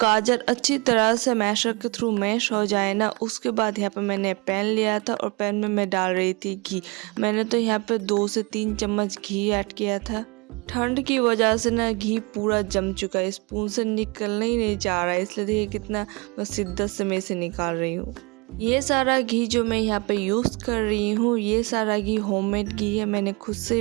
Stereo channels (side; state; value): left; quieter; 27.9 dB